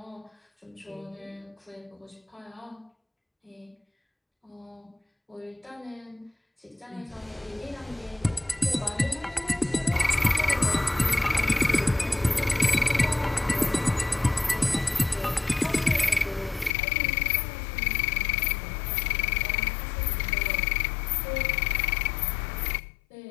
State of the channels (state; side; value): drops out; right; at 16.8 s